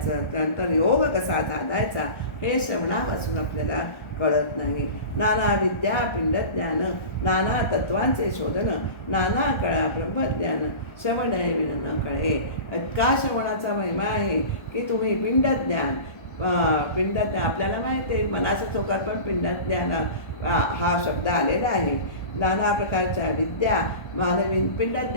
त्यानंतर योग कसा साधायचा हे श्रवणापासून आपल्याला कळत नाही. नाना विद्या पिंडज्ञान, नाना तत्वांचे शोधन, नाना कळा ब्रह्मज्ञान, श्रवण विण न कळे. इतका श्रवणाचा महिमा आहे की तुम्ही पिंडज्ञान आपल्याला माहिती आहे, मनाच्या चौकात पण पिंडज्ञान हा शब्द आलेला आहे. नाना प्रकारच्या विद्या, मानवी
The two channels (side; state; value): right; late; 1.3 ms